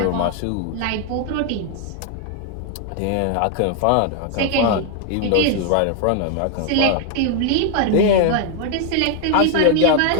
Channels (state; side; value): different; both; correlation 0.00